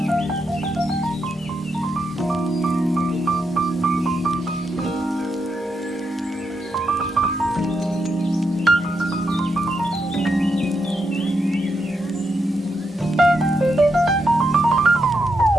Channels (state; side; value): normal; both; correlation 0.82